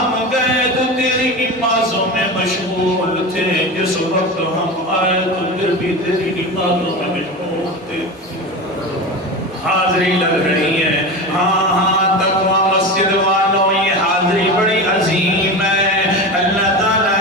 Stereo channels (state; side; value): normal; both; correlation 0.26